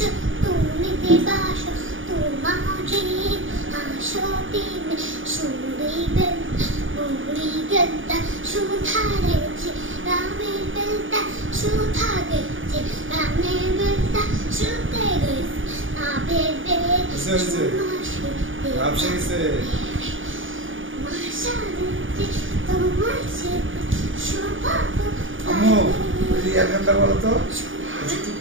আম্মু রিয়ার গানটা বলো তো একটু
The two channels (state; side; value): late; left; 0.57 ms